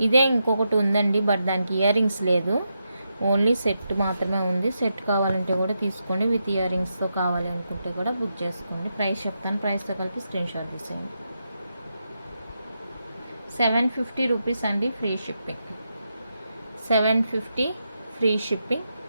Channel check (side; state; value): both; inverted; correlation -0.85